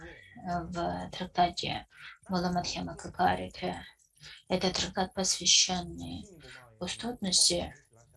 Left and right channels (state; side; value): identical; both; correlation 1.00